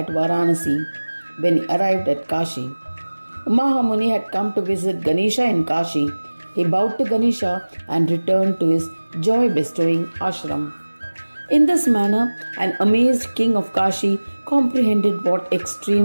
Varanasi, when he arrived at Kashi. Mahamuni had come to visit Ganesha in Kashi. He bowed to Ganesha and returned to his joy-bestowing ashram. In this manner, an amazed king of Kashi comprehended what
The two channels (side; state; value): both; inverted; correlation -1.00